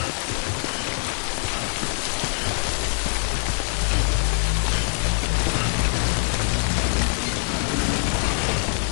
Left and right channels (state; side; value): silent; right; 61 dB below the other